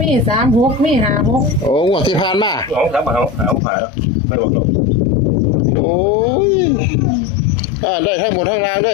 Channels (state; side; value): drops out; right; at 3.6 s